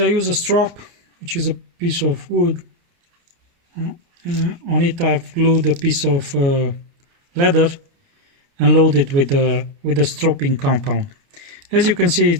use a strop, which is a piece of wood. On it I've glued a piece of leather and loaded with the stropping compound. As you can see,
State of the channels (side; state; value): left; late; 29 ms